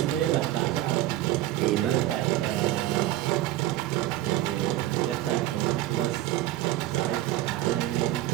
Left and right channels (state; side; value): quieter; left; 14.8 dB